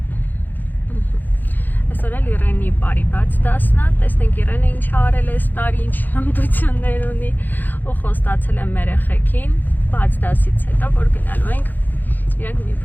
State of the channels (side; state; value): right; late; 0.087 ms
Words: Այսօր էլ Իրենի բարի բաց դասն է, տեսնենք Իրենը ինչ արել է այս տարի, ինչ հմտություններ ունի ու խոստացել եմ մեր երեխեքին բաց դասից հետո, որ գնալու ենք իրենք մի